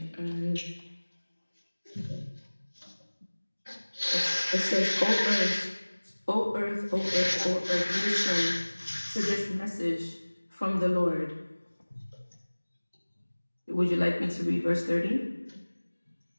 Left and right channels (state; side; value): inverted; both; correlation -1.00